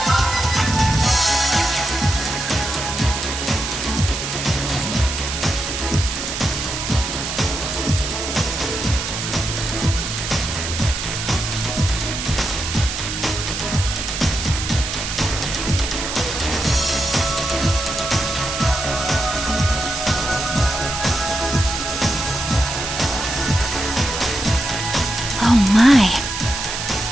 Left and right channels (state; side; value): noise; right; hiss, 4 dB below the sound